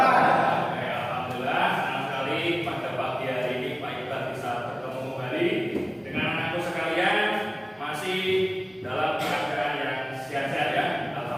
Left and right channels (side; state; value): both; identical; correlation 1.00